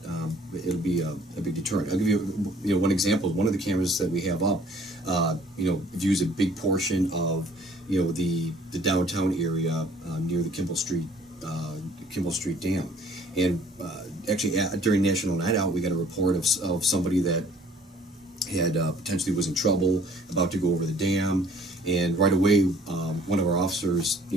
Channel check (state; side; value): normal; both; correlation 0.57